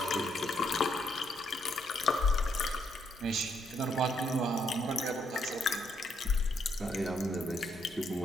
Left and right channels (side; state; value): both; normal; correlation 0.74